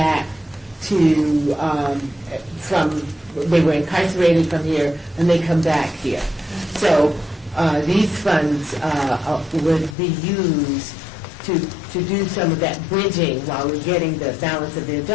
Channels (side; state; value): right; drops out; at 10.0 s